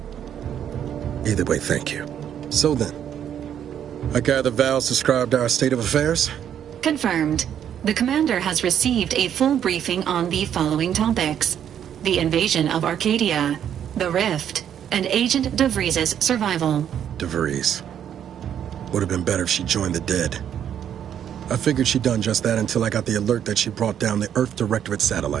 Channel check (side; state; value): left; quieter; 9.4 dB